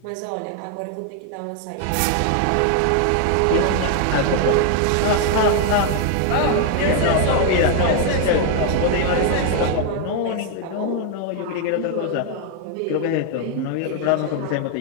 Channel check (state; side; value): different; both; correlation 0.00